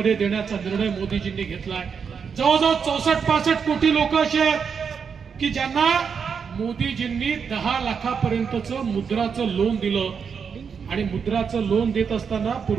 देण्याचा निर्णय मोदीजींनी घेतलाय. जवळजवळ 64-65 कोटी लोक असे आहेत की ज्यांना मोदीजींनी 10 लाखापर्यंतचं मुद्राचं लोन दिलं. आणि मुद्राचं लोन देत असताना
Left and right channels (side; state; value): left; quieter; 6.4 dB